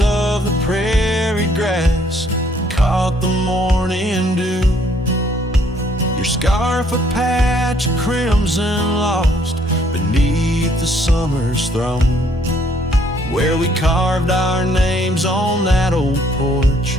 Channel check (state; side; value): normal; both; correlation 0.65